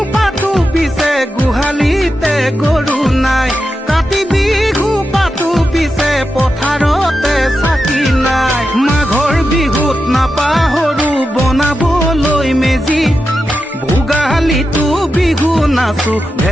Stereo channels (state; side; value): normal; both; correlation 0.90